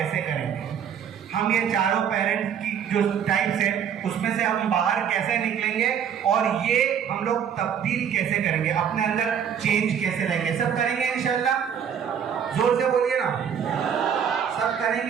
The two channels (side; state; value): left; quieter; 8.2 dB